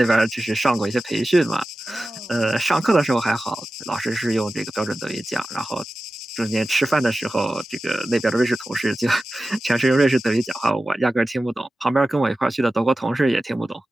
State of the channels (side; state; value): both; normal; correlation 0.95